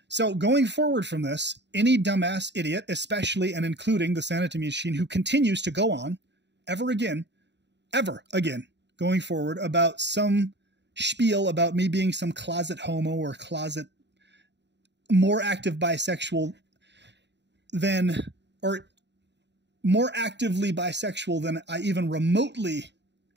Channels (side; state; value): left; late; 0.51 ms